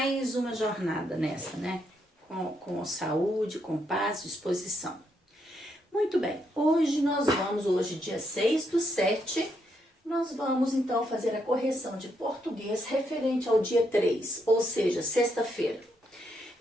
uma jornada nessa, né? Com saúde, com paz, disposição. Muito bem, hoje dia 6/7, nós vamos então fazer a correção de português referente ao dia 3, ou seja, sexta-feira.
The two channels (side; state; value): both; normal; correlation 0.77